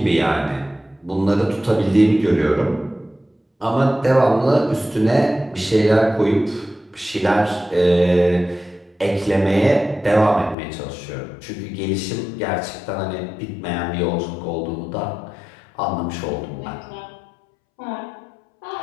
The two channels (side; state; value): right; drops out; at 10.6 s